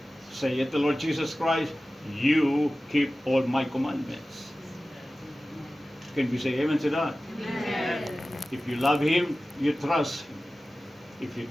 say it to Lord Jesus Christ, you keep all my commandments. Can we say amen to that? Amen. If you love Him, you trust Him. If you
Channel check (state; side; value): normal; both; correlation 0.96